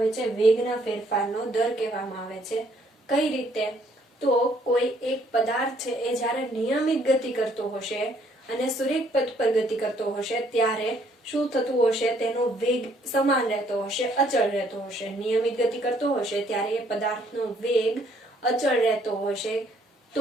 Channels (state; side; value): normal; both; correlation 0.66